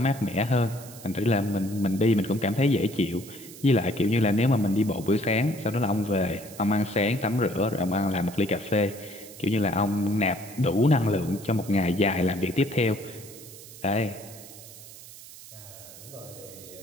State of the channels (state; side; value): noise; right; hiss, 17 dB below the sound